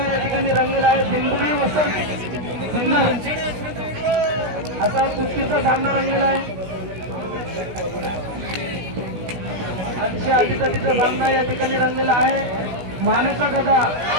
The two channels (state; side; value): late; left; 16 ms